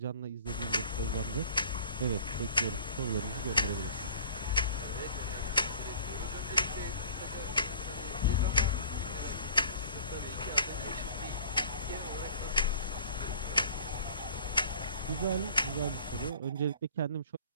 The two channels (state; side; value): inverted; both; correlation -0.48